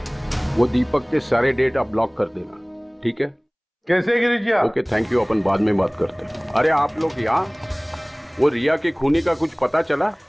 वो दीपक के सारे डेटा ब्लॉक कर देना, ठीक है? कैसे गिरीश जी? ओके, थैंक यू, अपन बाद में बात करते हैं। अरे आप लोग यहाँ, वो रिया के खूनी का कुछ पता चला?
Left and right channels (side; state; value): both; identical; correlation 1.00